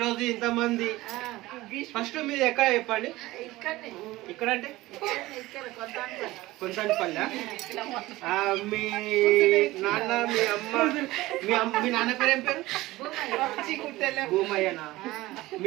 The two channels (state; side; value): quieter; left; 18.4 dB